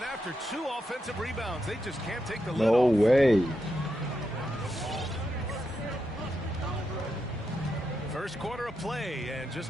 after 2 offensive rebounds, they just can't take the lid off. No way. First quarter of play and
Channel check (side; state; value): both; normal; correlation 0.85